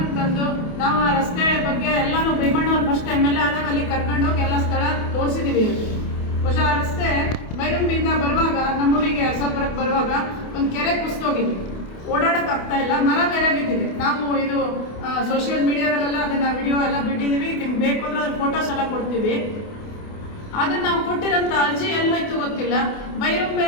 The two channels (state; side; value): late; right; 28 ms